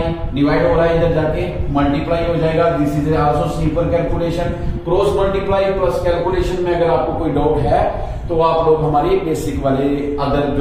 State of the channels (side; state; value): both; identical; correlation 1.00